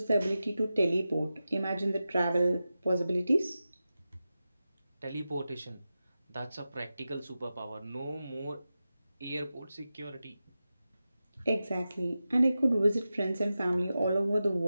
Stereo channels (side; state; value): both; inverted; correlation -0.93